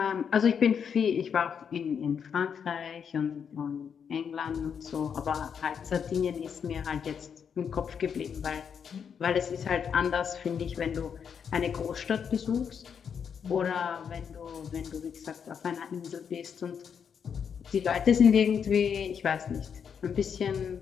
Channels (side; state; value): right; quieter; 7.2 dB